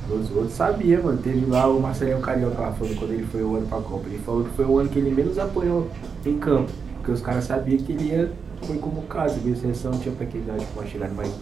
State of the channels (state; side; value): quieter; left; 5.8 dB